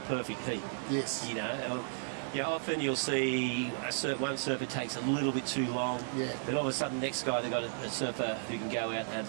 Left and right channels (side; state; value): left; silent; digital silence